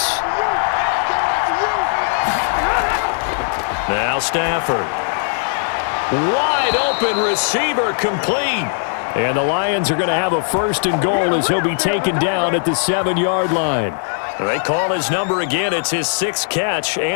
Now Stafford. Wide open receiver complete. And the Lions are going to have a 1st and goal as he'll be taken down at the 7-yard line. They call his number again. It's his 6th catch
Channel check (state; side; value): silent; right; 67 dB below the other